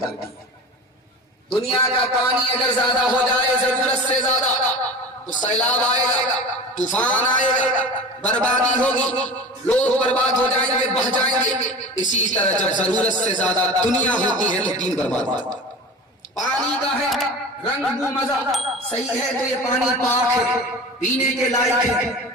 ہے. دنیا کا پانی اگر زیادہ ہو جائے ضرورت سے زیادہ تو سیلاب آئے گا, طوفان آئے گا, بربادی ہوگی, لوگ برباد ہو جائیں گے, بہہ جائیں گے. اسی طرح جب ضرورت سے زیادہ دنیا ہوتی ہے تو دین برباد ہوتا ہے. پانی کا ہے رنگ بو مزہ صحیح ہے تو یہ پانی پاک ہے, پینے کے لائق ہے.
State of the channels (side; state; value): both; normal; correlation 0.34